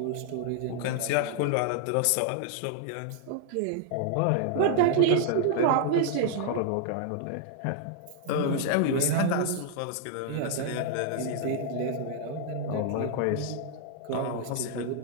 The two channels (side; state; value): both; different; correlation 0.00